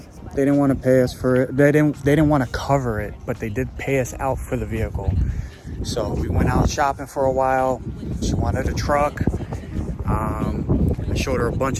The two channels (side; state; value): both; identical; correlation 1.00